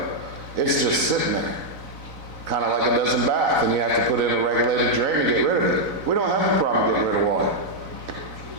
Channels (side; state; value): left; late; 4.0 ms